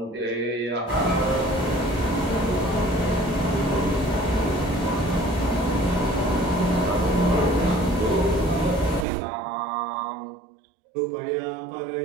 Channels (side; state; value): left; drops out; at 9.1 s